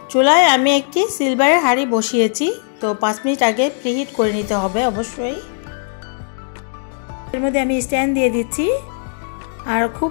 চুলায় আমি একটি সিলভারের হাঁড়ি বসিয়েছি। তো 5 মিনিট আগে প্রিহিট করে নিতে হবে অবশ্যই। এর মধ্যে আমি স্ট্যান্ড দিয়ে দিচ্ছি, আর খুব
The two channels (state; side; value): silent; right; digital silence